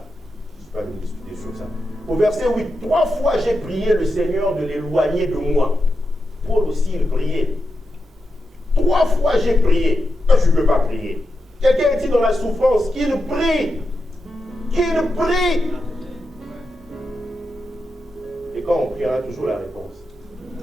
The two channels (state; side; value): normal; both; correlation 0.87